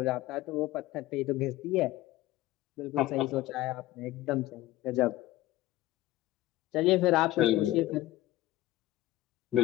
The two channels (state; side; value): quieter; right; 16.4 dB